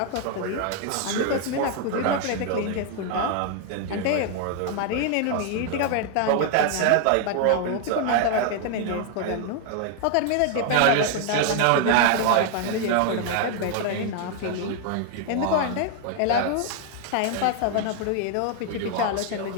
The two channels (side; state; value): both; different; correlation 0.00